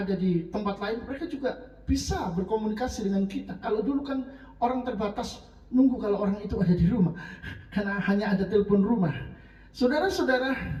di tempat lain, mereka juga bisa berkomunikasi dengan kita. Kalau dulu kan orang terbatas nunggu kalau orang itu ada di rumah, karena hanya ada telepon rumah. Saudara-saudara,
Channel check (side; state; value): both; identical; correlation 1.00